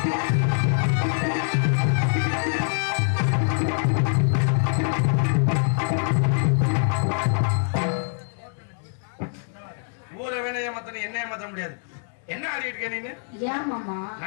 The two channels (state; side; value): silent; right; 62 dB below the other